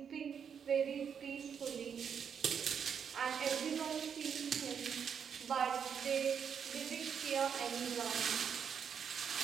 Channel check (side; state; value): left; quieter; 7.3 dB